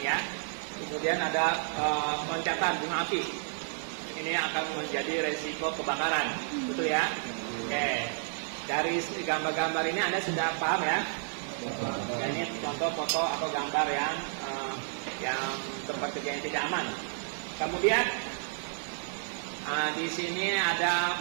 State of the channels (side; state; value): left; silent; 57 dB below the other